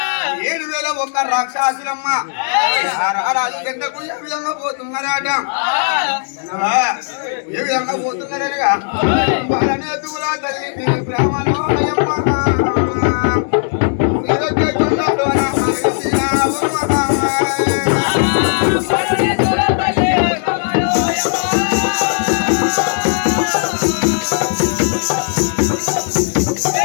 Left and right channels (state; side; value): silent; right; digital silence